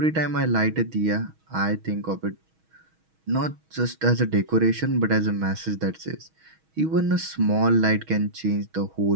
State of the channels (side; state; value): left; late; 6.3 ms